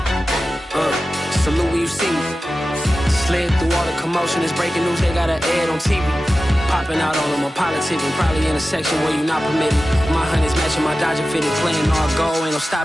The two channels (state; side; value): normal; both; correlation 0.94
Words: salute when you see me. Slid through all the commotion, it's breaking news, they got an ad on TV. Popping out on them, I'm politicking, probably in a section where you not permitted. My honey's matching my Dodger fitted, playing all goal, ain't no